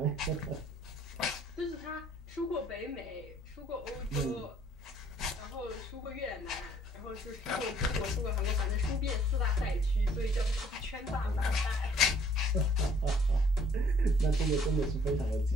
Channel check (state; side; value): normal; both; correlation 0.61